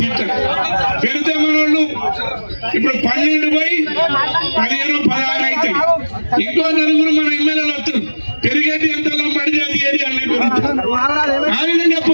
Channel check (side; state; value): both; inverted; correlation -1.00